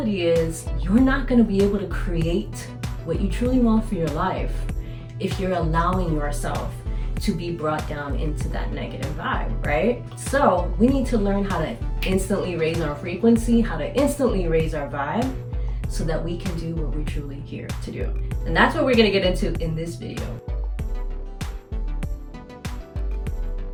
is you're not going to be able to create what you truly want for your life if you're allowing yourself to be brought down into that negative vibe, right? So we need to learn how to instantly raise our frequency, how to instantly raise our vibe so that we can do what we're truly here to do. And that's what we're going to get into in this video.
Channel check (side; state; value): both; identical; correlation 1.00